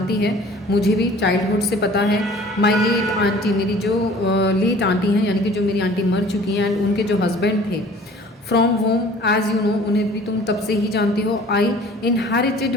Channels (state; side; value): normal; both; correlation 0.49